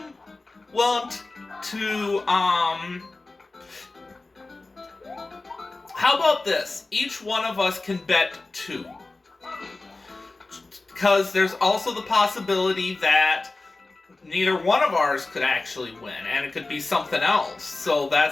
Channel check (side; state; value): right; quieter; 3.3 dB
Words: willing to, how about this? Each one of us can bet 2. Because there's also the possibility that neither one of ours could actually win, and it could be something else. So